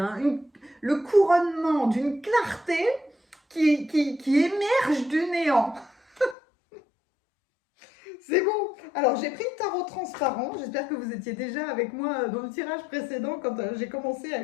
Le couronnement d'une clarté qui émerge du néant. C'est bon. Alors, j'ai pris le tarot transparent. J'espère que vous étiez déjà avec moi dans le tirage précédent quand j'ai commencé à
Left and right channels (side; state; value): right; drops out; at 6.4 s